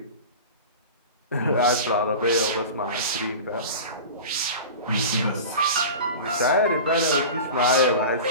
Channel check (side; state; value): both; inverted; correlation -0.33